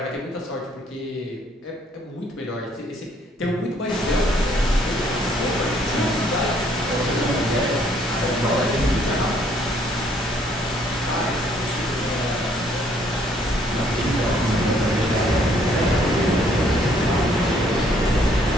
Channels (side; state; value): both; normal; correlation 0.65